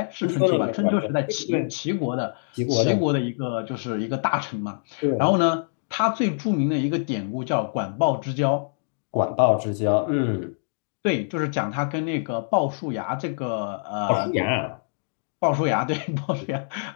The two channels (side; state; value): right; silent; digital silence